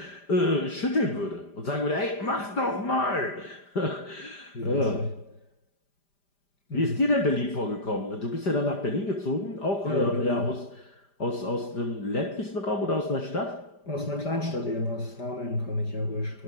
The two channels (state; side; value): late; right; 5.0 ms